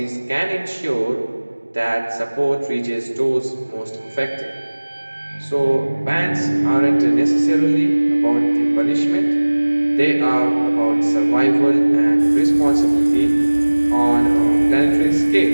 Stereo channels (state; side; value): inverted; both; correlation -1.00